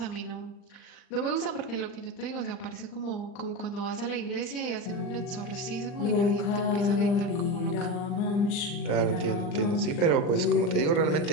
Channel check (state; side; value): late; right; 39 ms